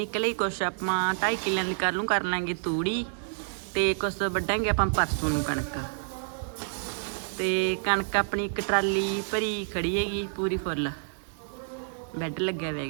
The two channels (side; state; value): left; silent; digital silence